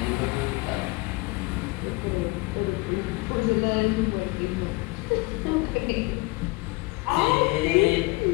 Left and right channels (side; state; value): right; quieter; 24.0 dB